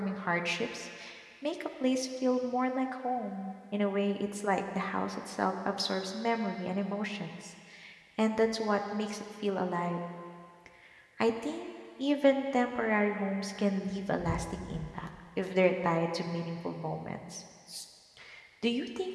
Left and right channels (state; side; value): identical; both; correlation 1.00